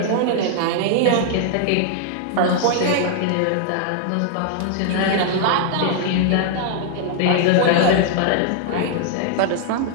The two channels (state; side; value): different; both; correlation 0.00